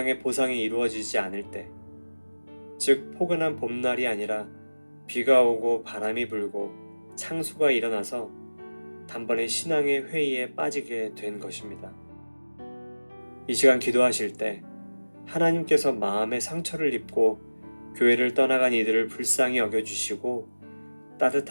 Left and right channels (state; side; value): inverted; both; correlation -1.00